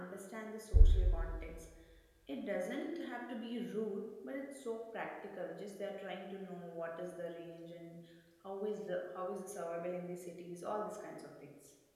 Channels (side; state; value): both; identical; correlation 1.00